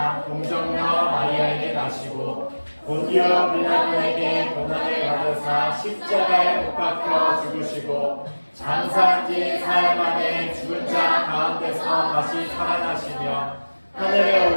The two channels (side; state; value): both; inverted; correlation -1.00